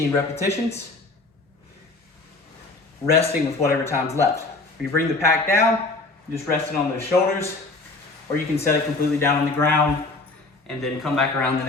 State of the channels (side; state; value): right; quieter; 3.3 dB